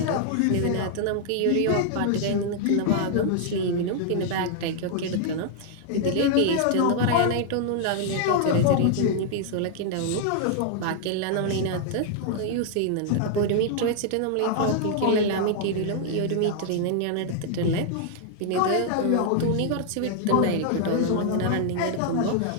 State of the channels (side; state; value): both; different; correlation 0.00